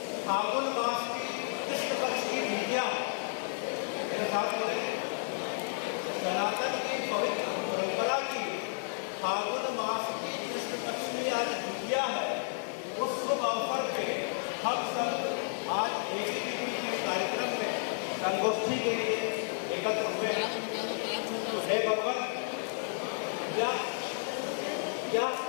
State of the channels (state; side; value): silent; right; 56 dB below the other